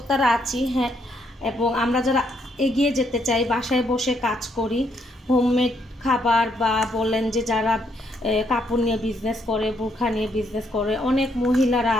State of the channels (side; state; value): both; normal; correlation 0.73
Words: আছি, হ্যাঁ, এবং আমরা যারা এগিয়ে যেতে চাই, বাসায় বসে কাজ করি, হোমমেড খাবার বা বলেন যে যারা কাপড় নিয়ে বিজনেস করে, বোরখা নিয়ে বিজনেস করে, অনেক মহিলারা